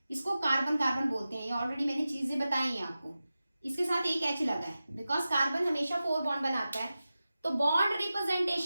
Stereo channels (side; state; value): both; inverted; correlation -0.94